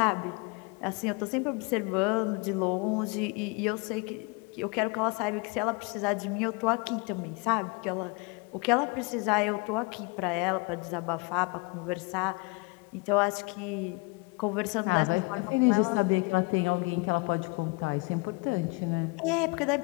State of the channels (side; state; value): right; quieter; 28.4 dB